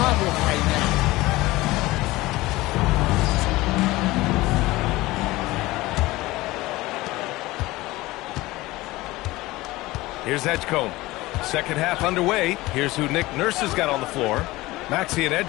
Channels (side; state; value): right; quieter; 19.4 dB